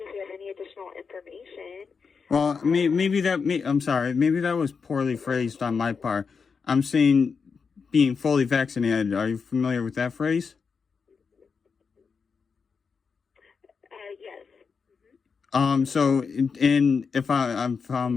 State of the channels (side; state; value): right; quieter; 5.5 dB